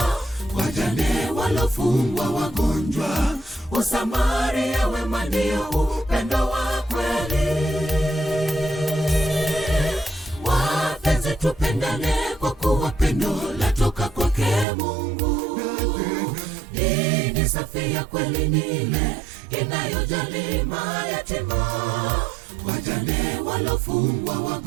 wajane, walofungwa, wagonjwa. Usamaria wema ndio upendo wa kweli. Wapenzi, tupendane kwa kuwa pendo latoka kwake Mungu. Dini safi ya kweli ni ile inayojali mayatima, wajane, walofungwa,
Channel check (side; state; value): left; drops out; at 14.7 s